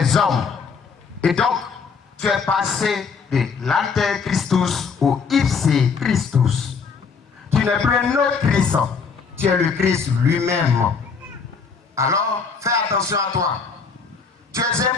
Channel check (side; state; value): right; quieter; 5.4 dB